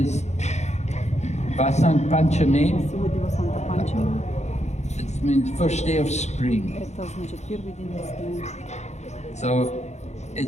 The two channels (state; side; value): late; right; 0.33 ms